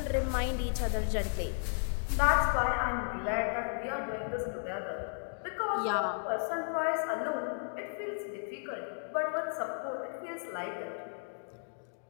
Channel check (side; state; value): right; silent; digital silence